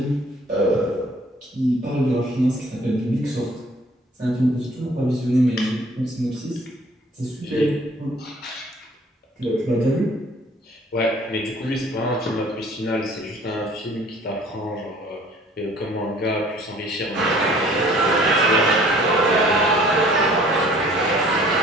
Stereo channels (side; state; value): both; normal; correlation 0.54